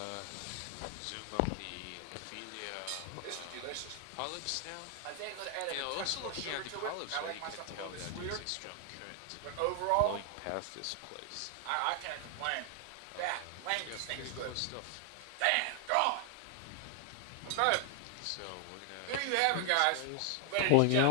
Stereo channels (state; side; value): different; both; correlation 0.00